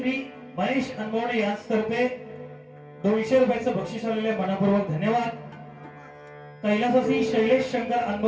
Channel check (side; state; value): both; identical; correlation 1.00